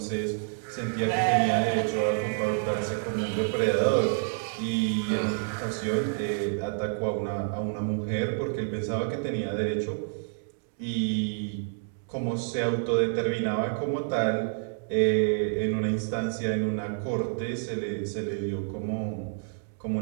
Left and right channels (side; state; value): left; silent; digital silence